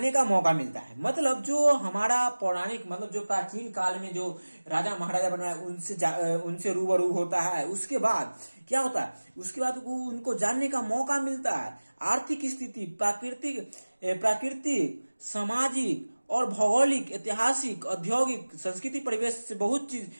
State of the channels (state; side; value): inverted; both; correlation -1.00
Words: का मौका मिलता है। मतलब जो हमारा पौराणिक, मतलब जो प्राचीन काल में जो राजा महाराजा बनाए, उनसे रूबरू होता है। उसके बाद क्या होता है, उसके बाद उनको जानने का मौका मिलता है। आर्थिक स्थिति, प्राकृतिक, सामाजिक और भौगोलिक, ऐतिहासिक, औद्योगिक, संस्कृति परिवेश से बहुत चीज